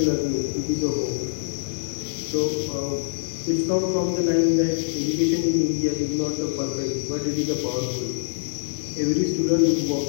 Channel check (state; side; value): silent; right; digital silence